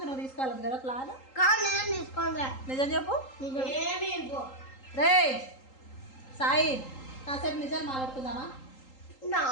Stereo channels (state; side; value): late; right; 3.8 ms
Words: నువ్వు తీసుకోవాలి కదా ప్లాన్. నిజం చెప్పు రే సాయి, కాసేపు నిజాలు మాట్లాడుకుందామా?